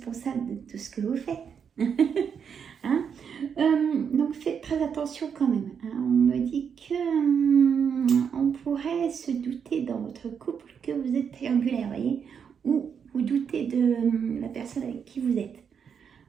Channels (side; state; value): left; quieter; 7.1 dB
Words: de tout ce que vous faites. Hein? Donc, faites très attention quand même. Hein? On me dit que on pourrait se douter dans votre couple que vous êtes triangulaire, voyez, ou vous doutez de la personne avec qui vous êtes.